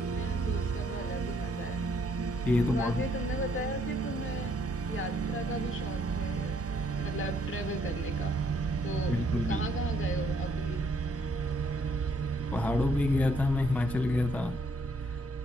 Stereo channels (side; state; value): both; normal; correlation 0.68